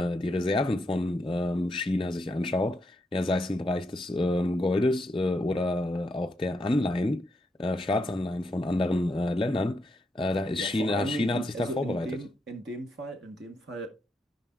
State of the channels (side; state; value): both; normal; correlation 0.81